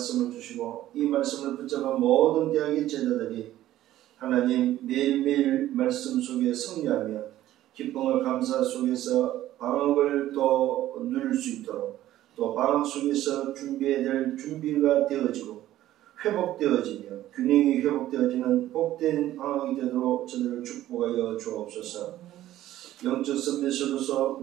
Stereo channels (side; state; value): left; quieter; 13.9 dB